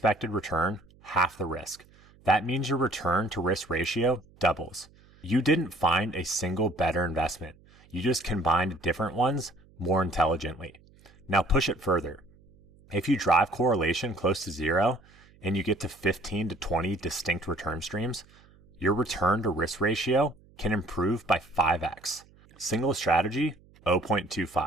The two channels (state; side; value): noise; right; hum, 28 dB below the sound